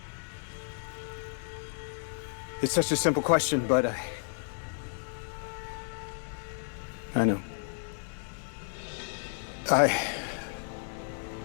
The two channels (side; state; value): right; silent; digital silence